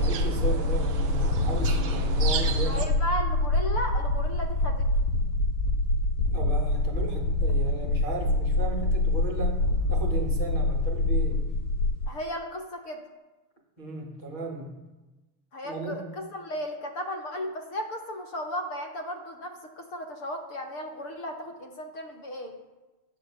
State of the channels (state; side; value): late; right; 6.7 ms